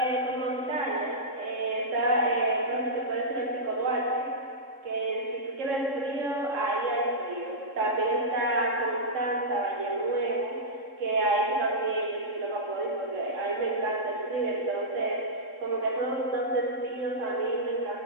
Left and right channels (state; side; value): late; left; 3.7 ms